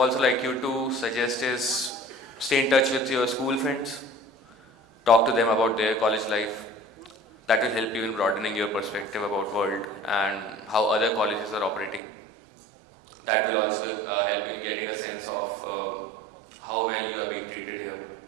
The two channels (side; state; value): left; drops out; at 12.0 s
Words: like you to suggest is stay in touch with your school friends, talk to them about their college life. That will help you in broadening your perspective about world and how other colleges are operating. That will also help you in getting a sense of how well you are being treated here